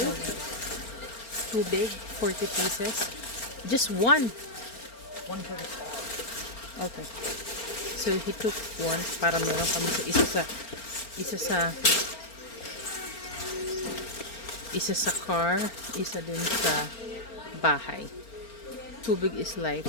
Too big, 40 pieces. Just one. one for the Okay. So he took one para meron kami sa isa sa car, isa din sa bahay. Too big is life.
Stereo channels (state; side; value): late; right; 4.4 ms